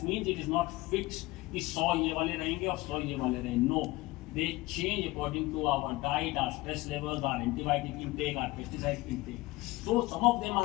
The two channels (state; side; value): quieter; right; 20.5 dB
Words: means it is not fixed. कि 100 ये वाले रहेंगे और 100 ये वाले रहेंगे. No, they change according to our diet, our stress levels, our antibiotic intake, our pesticide intake. So some of them